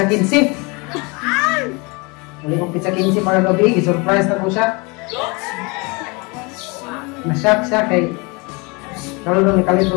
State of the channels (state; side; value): quieter; right; 28.4 dB